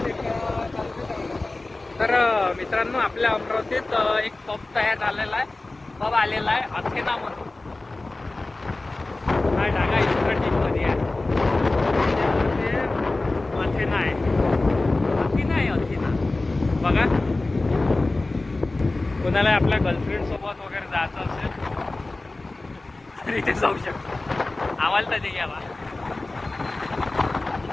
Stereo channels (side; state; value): right; quieter; 3.1 dB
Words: तर मित्रांनो आपल्या अमरावतीत एक पब तयार झालेला आहे, पब आलेला आहे अथेना म्हणून. हा डागा इन्स्ट्रक्टिंगमध्ये आहे. अथेना आहे, अथेना आहे, अथेना बघा. कोणाला आपल्या गर्लफ्रेंड सोबत वगैरे जायचं असेल तर इथे जाऊ शकतो. आम्हाला तर घ्यावा.